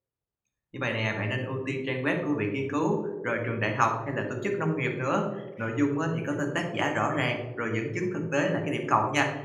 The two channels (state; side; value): identical; both; correlation 1.00